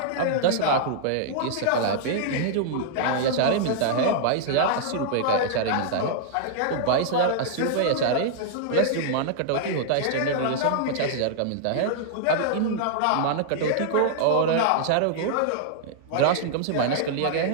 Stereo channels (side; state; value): both; different; correlation -0.01